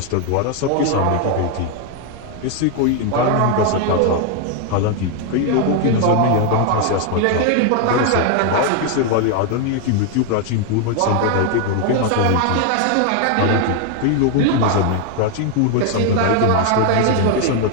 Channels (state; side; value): different; both; correlation 0.00